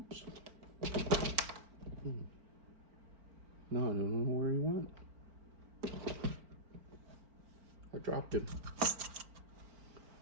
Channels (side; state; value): left; late; 4.4 ms